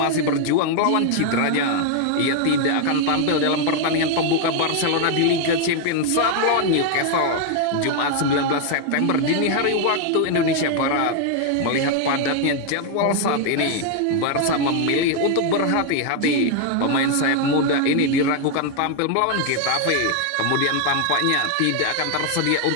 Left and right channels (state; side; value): different; both; correlation 0.00